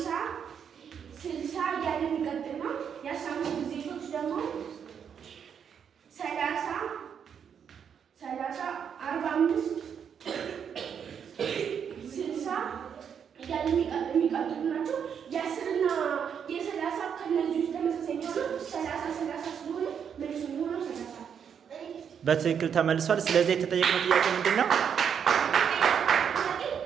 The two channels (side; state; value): left; quieter; 7.7 dB